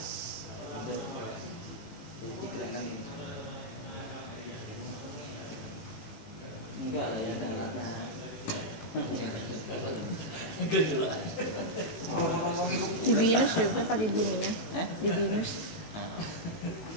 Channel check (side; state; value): right; late; 18 ms